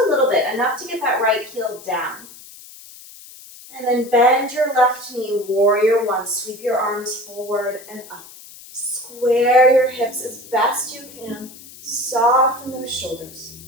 little bit, enough to get that right heel down. And then bend your left knee, warrior one. Sweep your arms forward and up. Square your hips as best you can. Soften those shoulders.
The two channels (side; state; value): left; noise; hiss, 19 dB below the sound